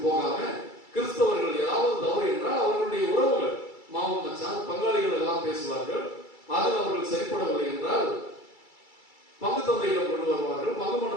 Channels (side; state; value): right; late; 2.3 ms